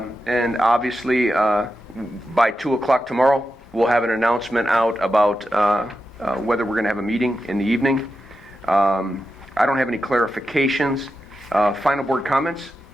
obviously by 2 o'clock tomorrow, we'll have an announcement out about whether we're going to have a meeting in the evening. I don't have any clarifications. Final board comments?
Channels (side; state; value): both; normal; correlation 0.89